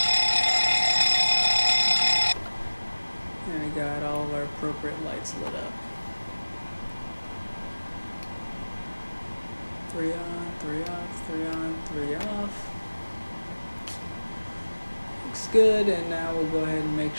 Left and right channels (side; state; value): both; inverted; correlation -1.00